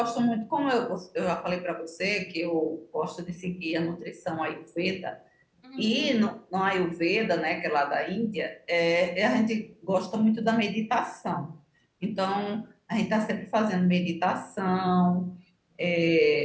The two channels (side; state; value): both; identical; correlation 1.00